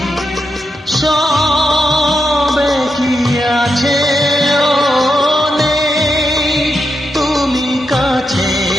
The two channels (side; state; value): both; normal; correlation 0.85